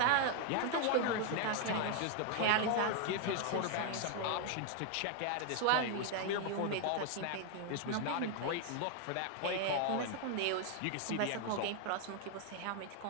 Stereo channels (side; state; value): both; different; correlation 0.00